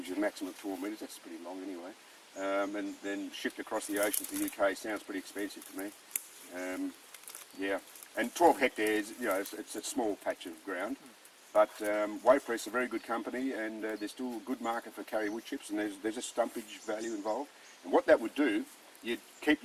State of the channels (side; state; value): both; identical; correlation 1.00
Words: you a maximum of 12 metres, that's pretty long anyway, and then shipped across the ocean to the UK sounds pretty expensive to me. Yeah, and 12 hectares, you know, it's a small patch of ground, but Waypress is a very good company, and there's still a good market for Karri wood chips, and there's a stumpage value involved. And what that would do, you'd keep